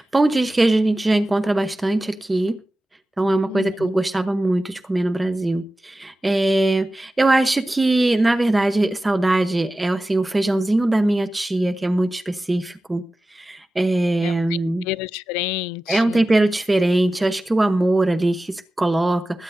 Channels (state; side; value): normal; both; correlation 0.95